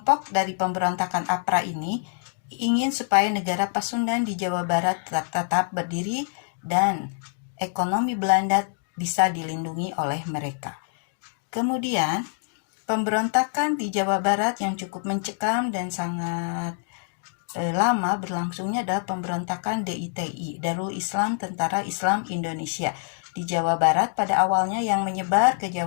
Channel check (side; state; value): right; silent; 60 dB below the other